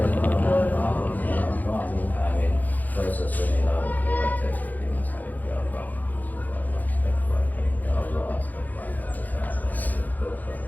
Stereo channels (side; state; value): right; late; 0.082 ms